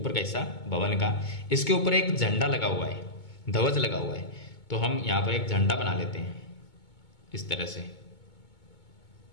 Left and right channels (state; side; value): late; right; 2.2 ms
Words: का हिस्सा भवन का, इसके ऊपर एक झंडा लगा हुआ है, ध्वज लगा हुआ है। तो हम यहां पर एक झंडा बना लेते हैं इस तरह से,